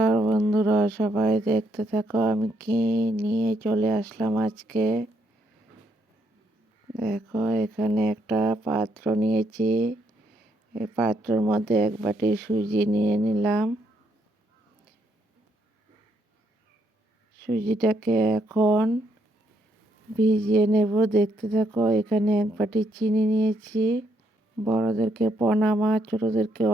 বন্ধুরা, সবাই দেখতে থাকো আমি কি নিয়ে চলে আসলাম আজকে। দেখো, এখানে একটা পাত্র নিয়েছি। এই পাত্রের মধ্যে এক বাটি সুজি নিয়ে নিলাম। সুজিটাকে এখন ভিজিয়ে নেব, দেখতে থাকো। এখানে এক বাটি চিনি নিয়েছি। বড়োদেরকে প্রণাম আর ছোটোদেরকে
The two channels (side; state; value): both; normal; correlation 0.74